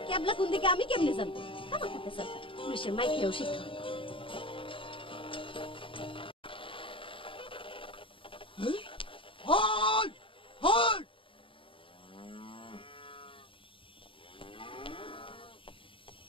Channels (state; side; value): late; right; 0.25 ms